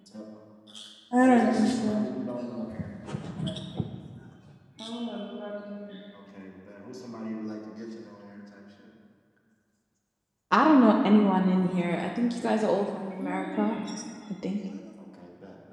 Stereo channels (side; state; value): both; identical; correlation 1.00